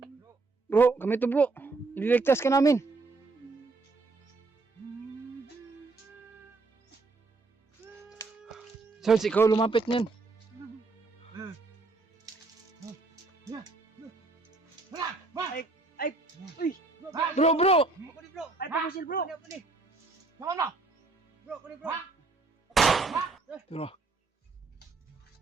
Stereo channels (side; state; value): left; quieter; 3.6 dB